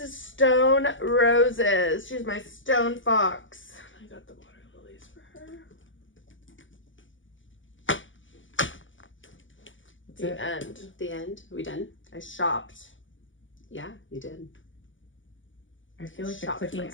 is Stone Roses. She's my stone fox. I got the water lilies for her. The end. The end. Are we done? I shopped. Yeah, you did. I feel like the Shocked clicking,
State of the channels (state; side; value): late; right; 0.56 ms